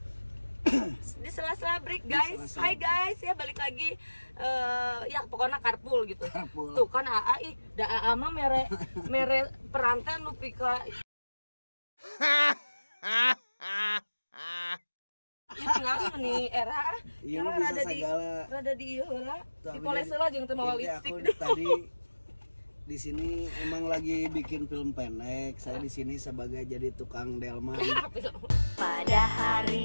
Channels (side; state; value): both; inverted; correlation -1.00